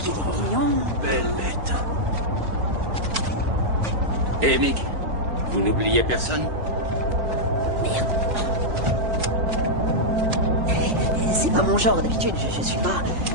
est mignon. Belle bête. Et Mick, vous n'oubliez personne? C'est pas mon genre d'habitude, je suis pas...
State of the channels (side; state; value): left; late; 4.5 ms